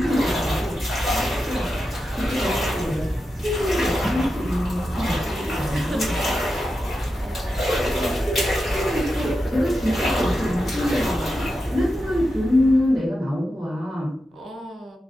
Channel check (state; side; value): normal; both; correlation 0.89